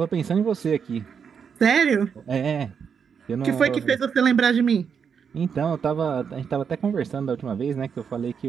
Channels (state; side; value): quieter; left; 6.8 dB